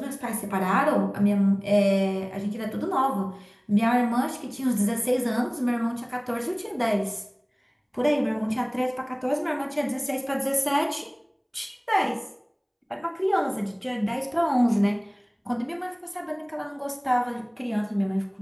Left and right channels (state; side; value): identical; both; correlation 1.00